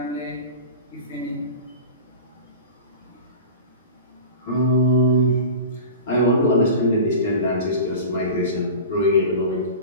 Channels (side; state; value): both; inverted; correlation -0.34